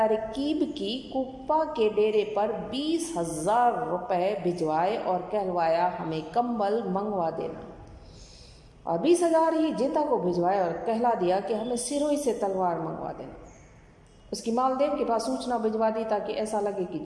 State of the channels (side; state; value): both; identical; correlation 1.00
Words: की, कुप्पा के डेरे पर 20,000 रुपये भिजवाए और कहलवाया हमें कंबल मंगवा देना। और 20,000 ही जेता को भिजवाए और कहला दिया कि हमें सिरोही से तलवार मंगवा देना। उसकी मालदेव के पास सूचना भिजवा दी ताकि ऐसा लगे कि